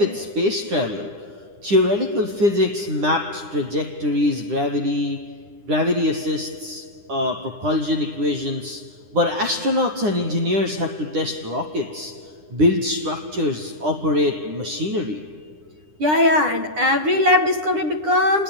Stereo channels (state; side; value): late; left; 9.9 ms